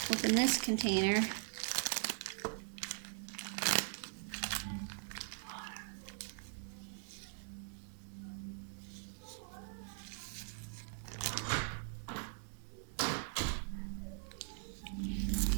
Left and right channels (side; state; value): left; silent; digital silence